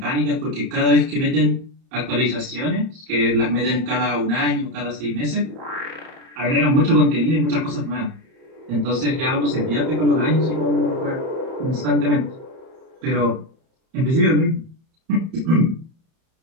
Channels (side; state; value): left; late; 31 ms